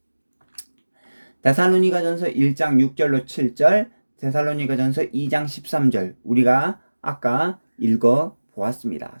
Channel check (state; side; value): inverted; both; correlation -1.00